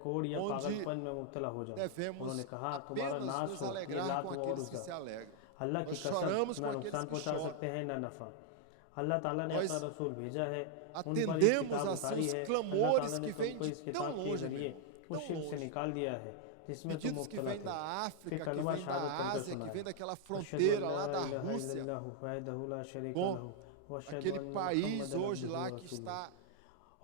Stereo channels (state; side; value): different; both; correlation 0.00